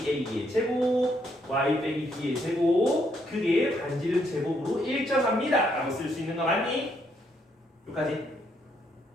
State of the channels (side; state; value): both; normal; correlation 0.73